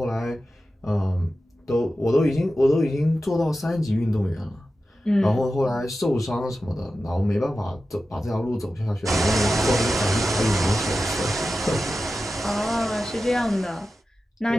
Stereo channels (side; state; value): both; normal; correlation 0.92